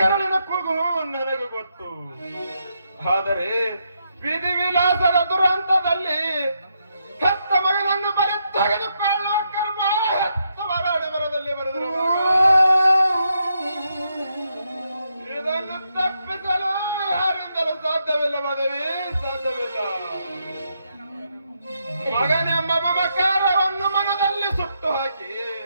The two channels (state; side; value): inverted; both; correlation -0.80